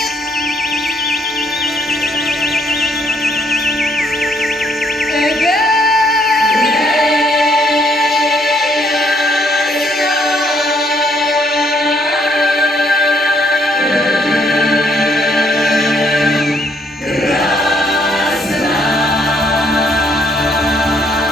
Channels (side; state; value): both; normal; correlation 0.69